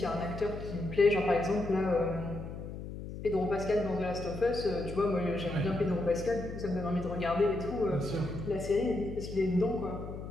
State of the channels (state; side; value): noise; left; hum, 9 dB below the sound